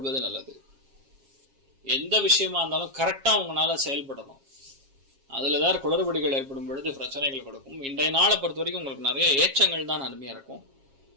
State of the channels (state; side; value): late; left; 7.4 ms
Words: நல்லது. எந்த விஷயமா இருந்தாலும் கரெக்டா உங்களால செயல்படணும். அதுல ஏதாவது குளறுபடிகள் ஏற்படும் பொழுது பிரச்சனைகள் கொடுக்கும். இன்றைய நாளை பொறுத்த வரைக்கும் உங்களுக்கு நிறைய ஏற்றங்கள் தான் அருமையா இருக்கும்.